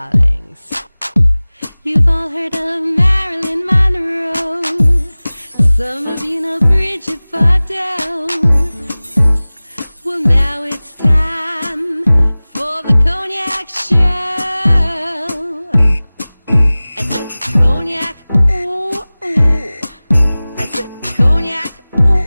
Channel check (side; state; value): both; inverted; correlation -0.99